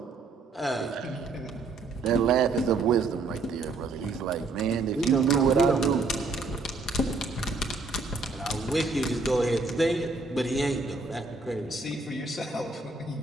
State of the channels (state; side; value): quieter; left; 3.8 dB